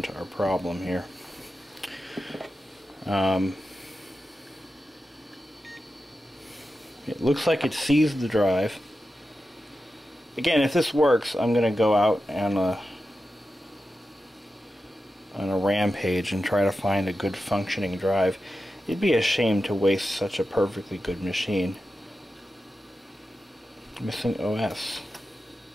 our problem here. It looks like it seized the drive. Again, if this works, I'm going to go out on a rampage and try to find a good functioning drive. It'd be a shame to waste such a perfectly good machine. Missing OS.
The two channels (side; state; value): both; normal; correlation 0.91